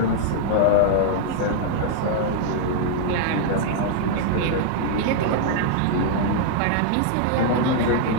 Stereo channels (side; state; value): both; different; correlation 0.00